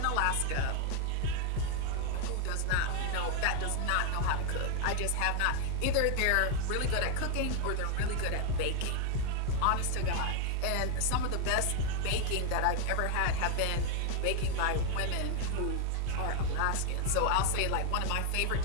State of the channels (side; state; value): both; different; correlation 0.00